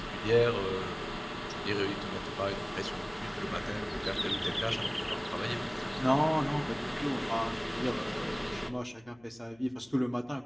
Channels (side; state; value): left; noise; hum, 29 dB below the sound